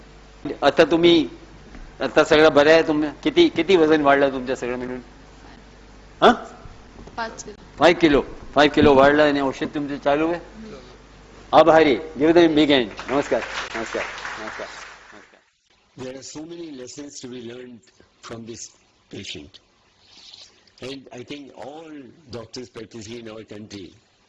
आता सगळं बरं आहे तुम्ही किती वजन वाढलं तुमच्या सगळं मिळून? 5 किलो वाढलं आणि औषध तुमचं चालू आहे. आभारी. Give them big hand. नमस्कार. There are so many lessons to be learned from this patient, and I think all doctors practicing in our country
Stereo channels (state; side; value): identical; both; correlation 1.00